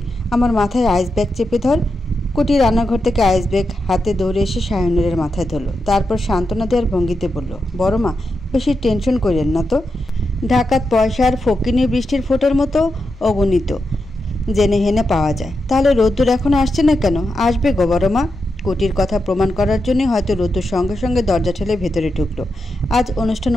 আমার মাথায় আইস ব্যাগ চেপে ধর। কুটি রান্নাঘর থেকে আইস ব্যাগ হাতে দৌড়ে এসে শাহানুরের মাথায় ধরল। তারপর সান্ত্বনা দেওয়ার ভঙ্গিতে বলল, বড় মা, বেশি টেনশন করেন না তো। ঢাকাত পয়সা আর ফকিনি বৃষ্টির ফোঁটার মতো অগণিত জেনে হেনে পাওয়া যায়। তাহলে রোদ্দুর এখন আসছে না কেন? আসবে গো বড় মা। কুটির কথা প্রমাণ করার জন্যই হয়তো রোদ্দুর সঙ্গে সঙ্গে দরজা ঠেলে ভেতরে ঢুকলো। আজ অনুষ্ঠান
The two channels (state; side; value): normal; both; correlation 0.87